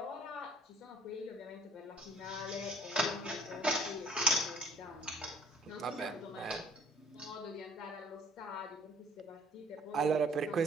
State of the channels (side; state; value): both; normal; correlation 0.56